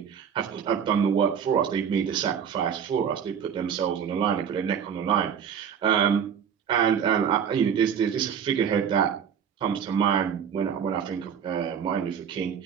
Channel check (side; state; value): left; quieter; 7.8 dB